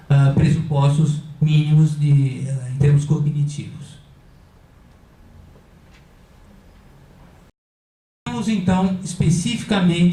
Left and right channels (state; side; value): identical; both; correlation 1.00